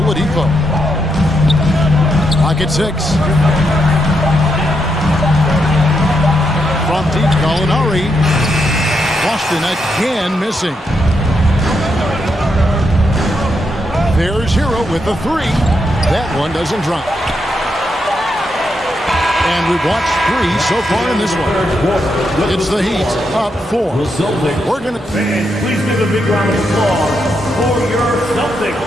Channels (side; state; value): both; normal; correlation 0.81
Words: Clock at 6. From deep, Gallinari. Boston again missing. There's Hero with the 3. That one doesn't drop. And we've watched 3 so far in this one. It's the Heat up 4. We're going to... Please give a big round of applause for your Celtics.